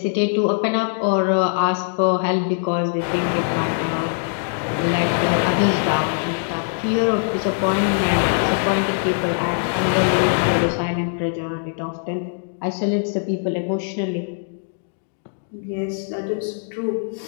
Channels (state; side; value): silent; right; digital silence